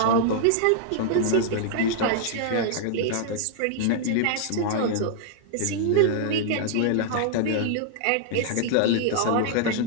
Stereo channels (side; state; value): both; different; correlation -0.01